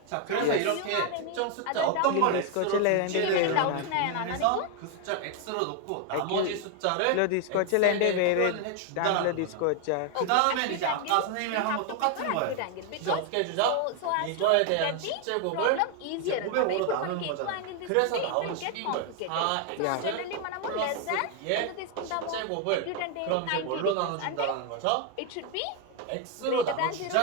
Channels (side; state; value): both; different; correlation 0.01